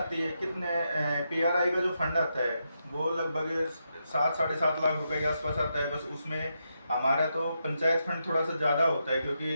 है। कितने PRI का जो फंड आता है वो लगभग 7-7.5 लाख रुपए के आसपास आता है। बस उसमें हमारा तो पंचायत फंड थोड़ा सा ज़्यादा होता है,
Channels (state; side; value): inverted; both; correlation -0.83